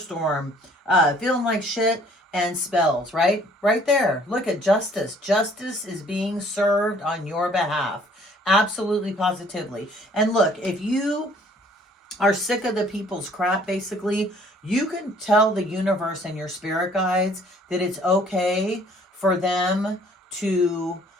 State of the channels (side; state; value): both; normal; correlation 0.58